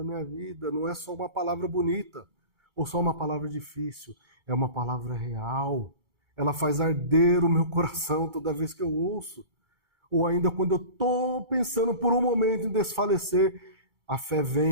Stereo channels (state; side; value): late; left; 2.3 ms